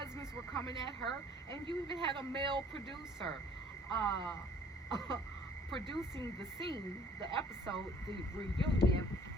were coming at her, and you even had a male producer producing the scene, the episode, the reunion,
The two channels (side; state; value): both; normal; correlation 0.55